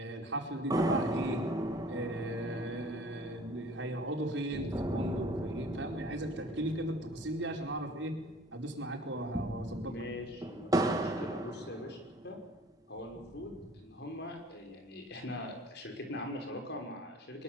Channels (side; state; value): both; normal; correlation 0.50